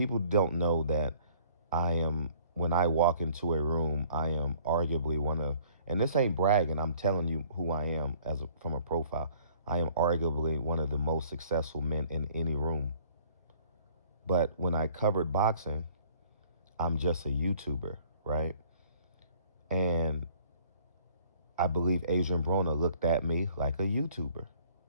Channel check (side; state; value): both; inverted; correlation -0.56